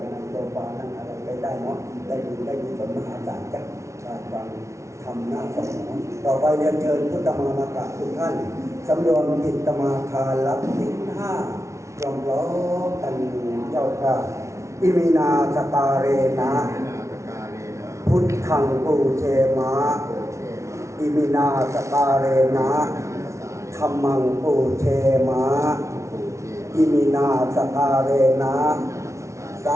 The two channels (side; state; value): left; late; 0.14 ms